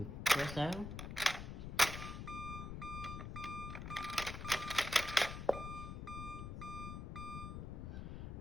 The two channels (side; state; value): left; noise; rumble, 6 dB below the sound